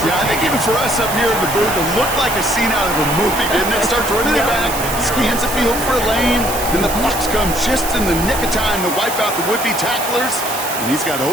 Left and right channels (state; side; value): noise; right; hiss, 7 dB below the sound